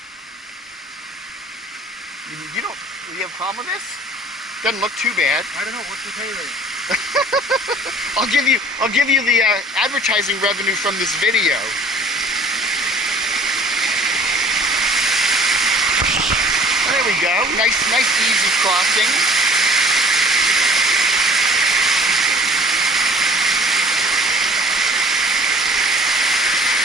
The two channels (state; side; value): normal; both; correlation 0.51